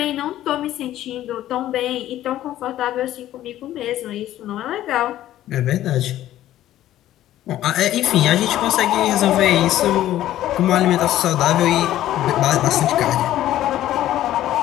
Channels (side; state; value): right; quieter; 13.3 dB